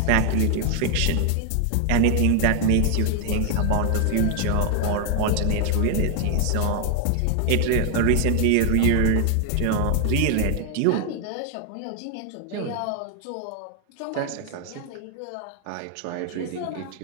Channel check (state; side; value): different; both; correlation 0.01